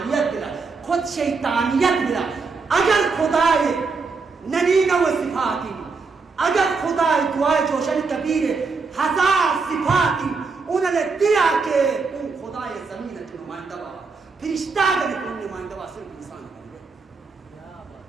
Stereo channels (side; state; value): left; quieter; 4.5 dB